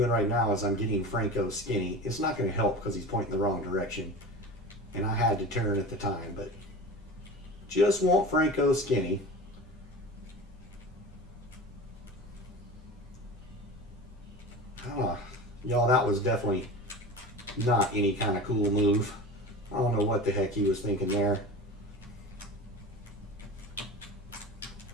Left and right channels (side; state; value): both; normal; correlation 0.33